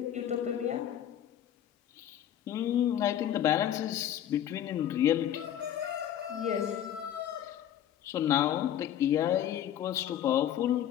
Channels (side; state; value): right; quieter; 10.8 dB